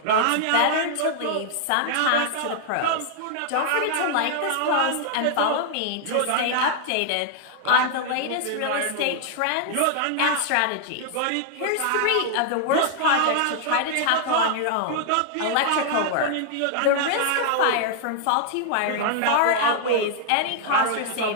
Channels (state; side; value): different; both; correlation 0.00